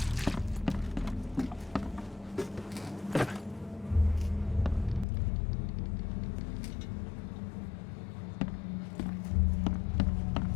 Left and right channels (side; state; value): right; drops out; at 5.1 s